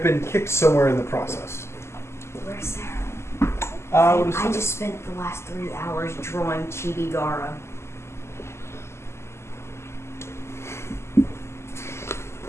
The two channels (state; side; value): late; right; 0.13 ms